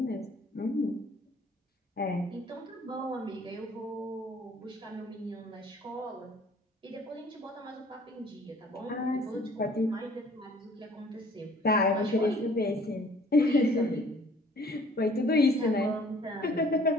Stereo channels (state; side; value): normal; both; correlation 0.55